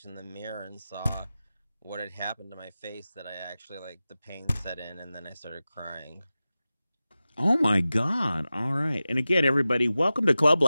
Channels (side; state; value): both; inverted; correlation -0.95